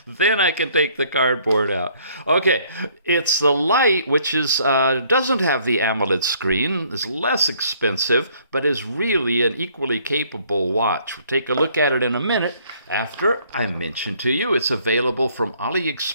Then I can take the cardboard out. Okay, it's the Lite, which is doesn't have the AMOLED screen, is less expensive, but is really an equally capable watch. We'll take a look at it in a minute after I mention to you it's available from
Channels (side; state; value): both; inverted; correlation -0.62